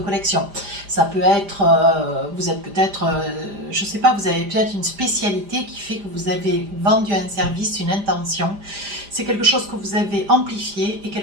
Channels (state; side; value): late; left; 5.0 ms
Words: Ça peut être, vous êtes peut-être, je ne sais pas, vous avez peut-être une spécialité qui fait que vous avez vendu un service, une intention. C'est quelque chose que vous avez amplifié et